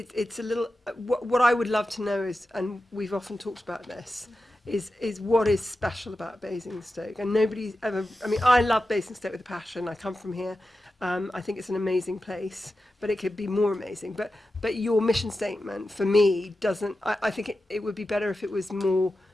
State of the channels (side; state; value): both; normal; correlation 0.92